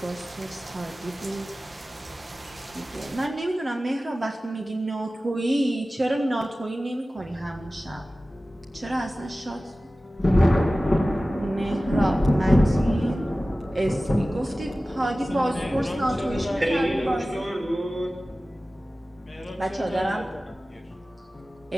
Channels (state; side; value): normal; both; correlation 0.96